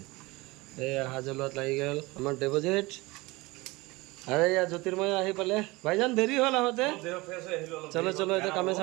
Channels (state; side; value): quieter; left; 22.6 dB